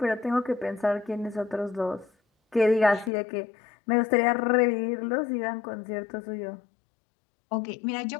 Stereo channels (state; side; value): drops out; right; at 3.1 s